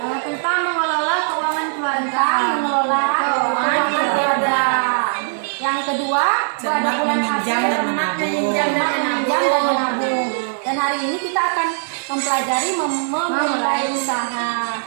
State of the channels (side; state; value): left; silent; digital silence